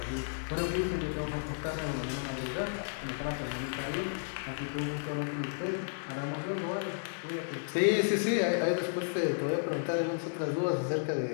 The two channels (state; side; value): silent; right; digital silence